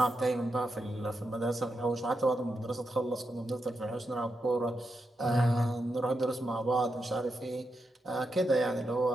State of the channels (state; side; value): normal; both; correlation 0.86